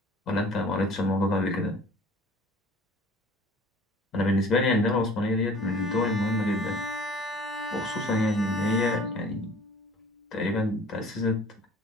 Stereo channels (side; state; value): both; normal; correlation 0.49